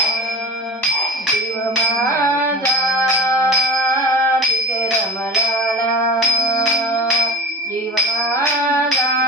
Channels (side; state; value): both; normal; correlation 0.32